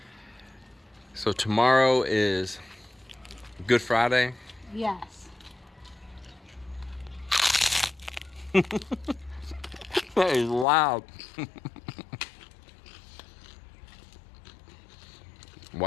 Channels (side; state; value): right; drops out; at 10.7 s